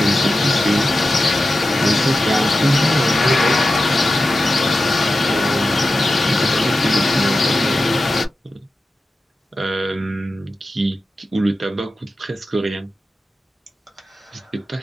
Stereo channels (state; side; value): normal; both; correlation 0.92